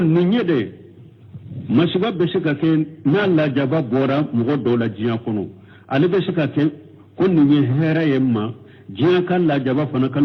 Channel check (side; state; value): both; identical; correlation 1.00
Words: نيدي مسبب بسكا كين نالا جبا بورا مغدو لجيا كنو ألي بسكا كين كن نيهيرا يما jiya kan la jaba fana